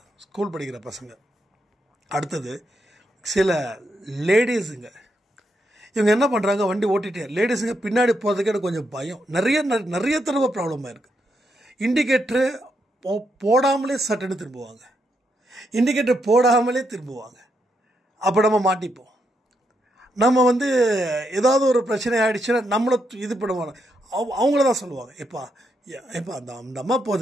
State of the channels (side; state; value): both; normal; correlation 0.80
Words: ஸ்கூல் படிக்கிற பசங்க, அடுத்தது சில லேடிஸுங்க, இவங்க என்ன பண்ணுறாங்க, வண்டி ஓட்டிகிட்டே லேடிஸுங்க பின்னாடி போகிறதுக்கு எனக்கு கொஞ்சம் பயம். நிறைய தடவை ப்ராப்ளமாக இருக்குது. இண்டிகேட்டரு போடாமலே சட்டுன்னு திரும்புவாங்க, இண்டிகேட்டர் போடாமலே திரும்புவாங்க. அப்போ நம்ம மாட்டிப்போம். நம்ம வந்து ஏதாவது ஒரு பிரச்சனை ஆகிடுச்சுன்னா நம்மளை இது பண்ணுவாங்க. அவங்கள தான் சொல்லுவாங்க, எப்பா அந்த அம்மா